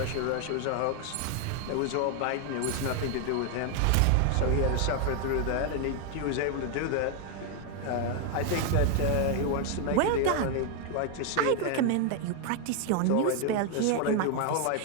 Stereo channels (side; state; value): both; different; correlation 0.01